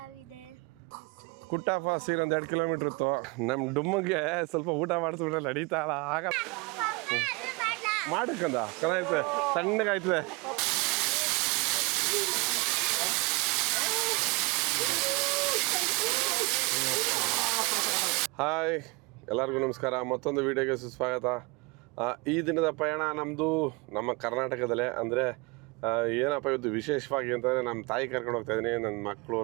ಕುಟ್ಟ ಫಾಲ್ಸ್ ಒಂದು 2 ಕಿಲೋಮೀಟರ್ ಇತ್ತು. ನಮ್ಮ ಡುಮ್ಮಗೆ ಸ್ವಲ್ಪ ಊಟ ಮಾಡಿಸ್ಬಿಟ್ರೆ ನಡೀತಾ ಆಗ ಮಾಡಕ್ಕಂದ ಚೆನ್ನಾಗೈತೆ, ಸಣ್ಣಗಾಯ್ತದೆ. ಹಾಯ್, ಎಲ್ಲರಿಗೂ ನಮಸ್ಕಾರ. ಮತ್ತೊಂದು ವಿಡಿಯೋಗೆ ಸುಸ್ವಾಗತ. ಈ ದಿನದ ಪಯಣ ನಮ್ಮದು ನಮ್ಮ ಕರ್ನಾಟಕದಲ್ಲೇ. ಅಂದರೆ ಏನಪ್ಪ ಇವತ್ತು ವಿಶೇಷವಾಗಿ ಅಂತಂದರೆ ನಮ್ಮ ತಾಯಿ ಕರ್ಕೊಂಡು ಹೋಗ್ತಾಯಿದ್ದೀನಿ, ನನ್ನ ಮಕ್ಕಳು,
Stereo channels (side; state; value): left; quieter; 27.8 dB